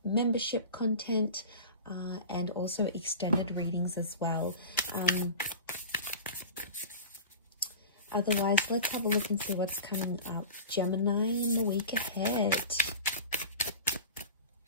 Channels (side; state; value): both; inverted; correlation -0.34